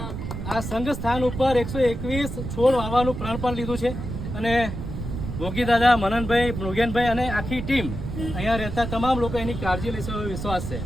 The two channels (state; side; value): noise; right; rumble, 6 dB below the sound